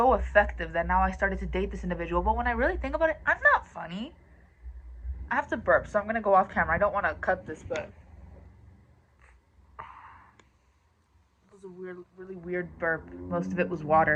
effective that now I started to date this individual. But when I really think about it, I'm not funny. I have to burp, so I'm gonna go off camera. I don't want to cut this, but it was a really weird burp. Most of it was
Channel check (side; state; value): both; identical; correlation 1.00